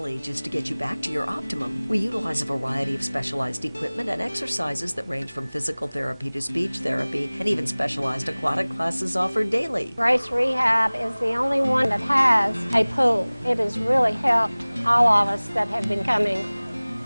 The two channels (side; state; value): both; inverted; correlation -1.00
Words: ages to get you back to your optimum. We utilize a variety of specialized equipment and exercises that range from physical therapy to speech therapy, and even specialized aquatic classes offered daily. Grace Rehab is the only one that has a pool. It has really helped all of us that have been coming